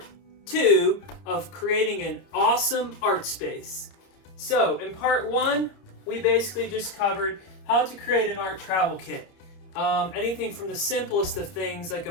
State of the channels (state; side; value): late; right; 30 ms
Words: 2 of creating an awesome art space. So in part 1, we basically just covered how to create an art travel kit. Anything from the simplest of things like